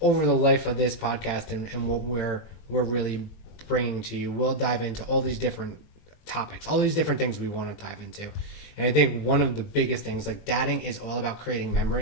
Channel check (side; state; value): right; late; 20 ms